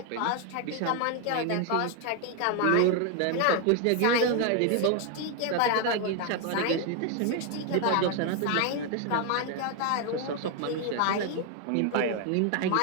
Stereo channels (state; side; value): different; both; correlation 0.01